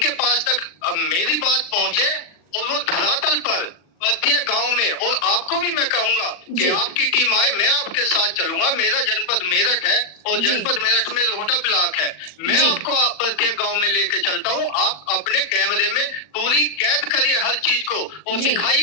पास तक मेरी बात पहुंचे और वो धरातल पर प्रत्येक गांव में, और आपको भी मैं कहूंगा कि आपकी टीम आए, मैं आपके साथ चलूंगा। मेरा जनपद मेरठ है और जनपद मेरठ में रोहटा ब्लॉक है, मैं आपको प्रत्येक गांव में लेके चलता हूं। आप अपने कैमरे में पूरी कैद करिए हर चीज को और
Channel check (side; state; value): right; late; 40 ms